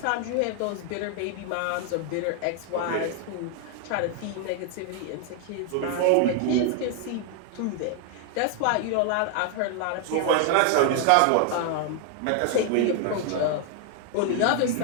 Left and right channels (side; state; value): both; different; correlation 0.00